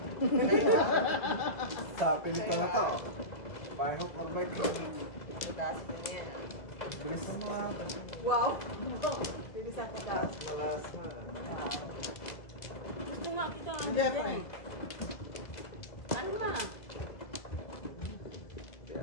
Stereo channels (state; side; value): late; right; 1.8 ms